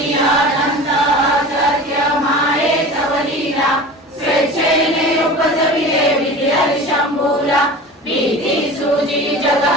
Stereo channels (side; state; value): both; normal; correlation 0.36